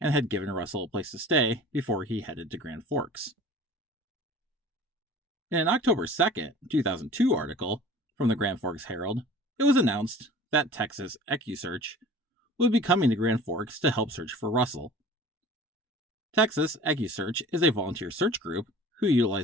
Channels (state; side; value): normal; both; correlation 0.44